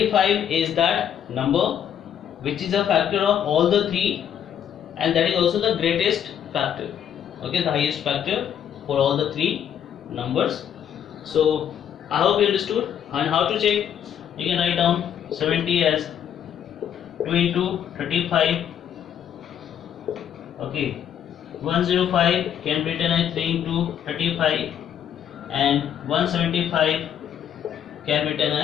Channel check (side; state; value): right; quieter; 9.3 dB